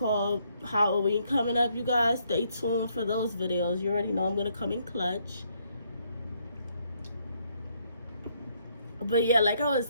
Halloween coming up, you guys. Stay tuned for those videos. You already know I'm gonna come in clutch. But yeah, like I was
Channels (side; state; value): both; inverted; correlation -0.72